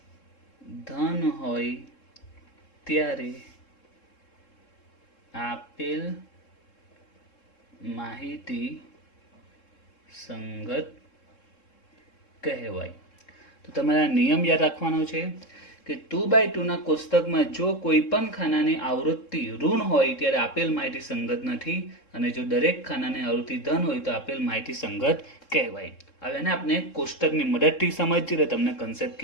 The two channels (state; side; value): late; right; 3.7 ms